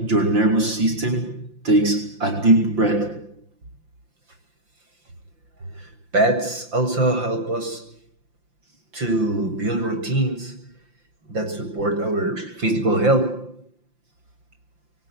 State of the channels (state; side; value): late; left; 5.8 ms